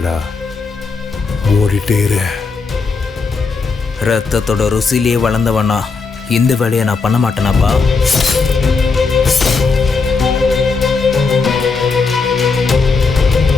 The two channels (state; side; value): quieter; right; 4.5 dB